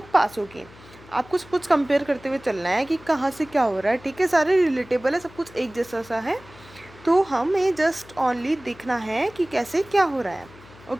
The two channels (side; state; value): left; noise; hum, 22 dB below the sound